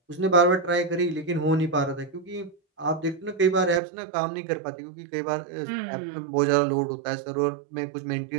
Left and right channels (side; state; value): left; drops out; at 3.8 s